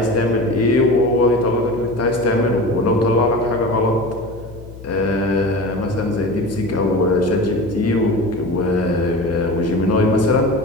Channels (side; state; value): left; noise; hum, 16 dB below the sound